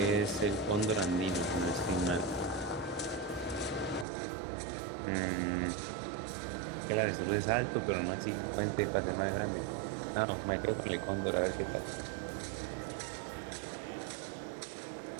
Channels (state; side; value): drops out; left; at 4.0 s